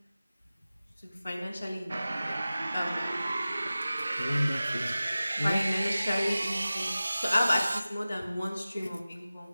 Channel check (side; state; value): both; inverted; correlation -0.96